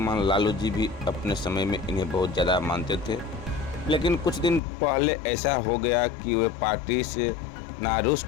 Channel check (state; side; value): drops out; right; at 4.6 s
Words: लालू जी भी अपने समय में इन्हें बहुत ज़्यादा मानते थे, लेकिन कुछ दिन पहले ऐसा हो गया कि वे पार्टी से